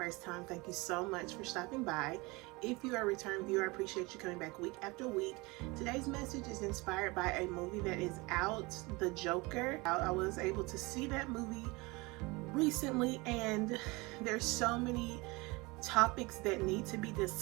time, thank you so much for stopping by. If you are a return viewer, I appreciate you coming back week after week. Today's message is inspired by a movie that is out, The Joker. I was able to see that movie recently, and there's so many topics that need to be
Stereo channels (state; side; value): quieter; left; 24.7 dB